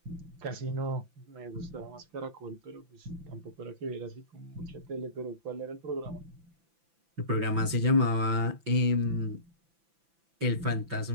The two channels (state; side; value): late; left; 5.9 ms